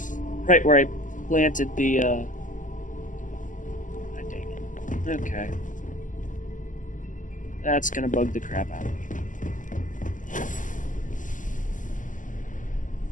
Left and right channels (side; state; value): right; late; 0.37 ms